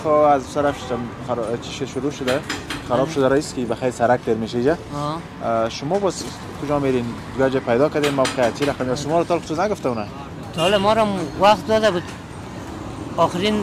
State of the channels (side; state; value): both; identical; correlation 1.00